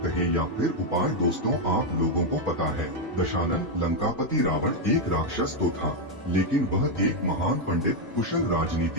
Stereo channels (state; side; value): normal; both; correlation 0.02